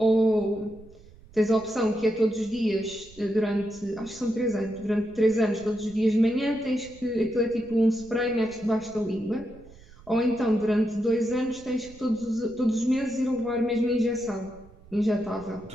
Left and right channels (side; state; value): right; noise; rumble, 23 dB below the sound